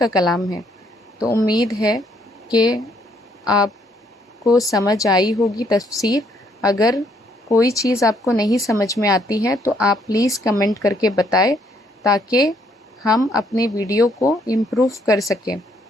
کلام ہے۔ تو امید ہے کہ آپ کو سمجھ آئی ہوگی تفسیر۔ اگر کوئی چیز آپ کو نہیں سمجھ میں آتی ہے تو آپ پلیز کمنٹ کر کے بتائیں، تاکہ ہم اپنے ویڈیو کو امپروو کر سکیں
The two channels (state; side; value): normal; both; correlation 0.69